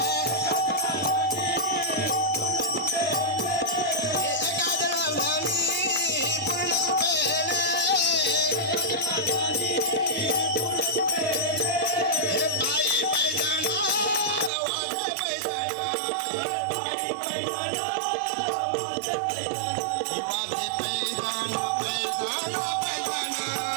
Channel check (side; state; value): left; drops out; at 14.5 s